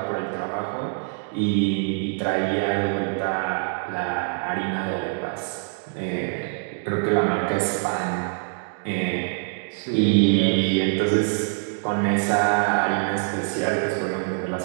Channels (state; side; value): silent; left; 62 dB below the other